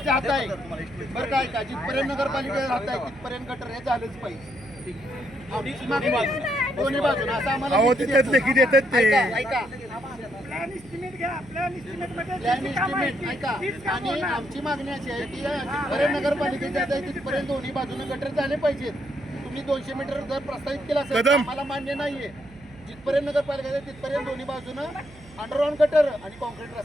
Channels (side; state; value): right; noise; hum, 22 dB below the sound